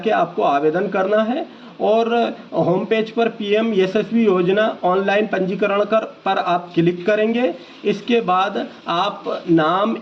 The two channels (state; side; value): identical; both; correlation 1.00